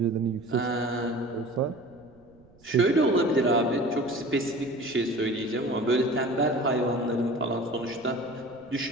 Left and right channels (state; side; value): noise; right; rumble, 28 dB below the sound